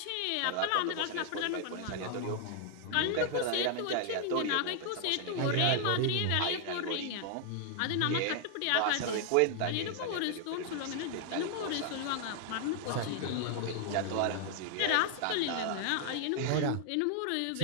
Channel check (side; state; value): both; different; correlation 0.00